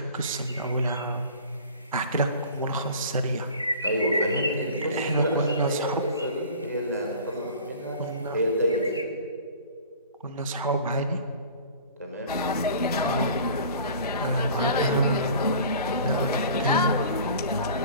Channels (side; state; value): both; inverted; correlation -0.44